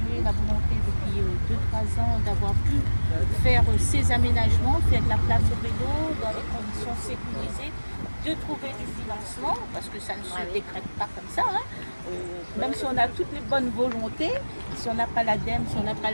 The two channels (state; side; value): inverted; both; correlation -1.00